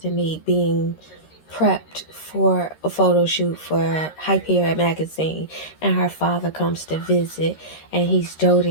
being prepped for a photo shoot for Hyperion magazine, and her father comes to visit, and he's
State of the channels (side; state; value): right; late; 13 ms